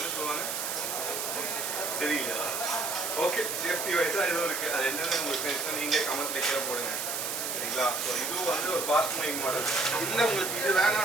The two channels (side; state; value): right; noise; hiss, 3 dB below the sound